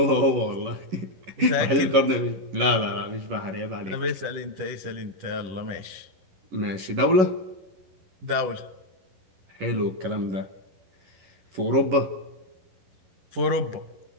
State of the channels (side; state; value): left; late; 11 ms